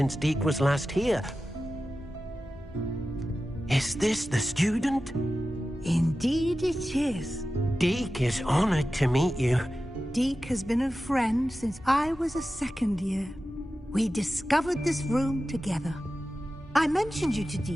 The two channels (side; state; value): both; normal; correlation 0.94